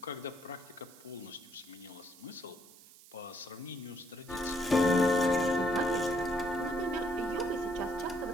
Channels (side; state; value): right; noise; hiss, 22 dB below the sound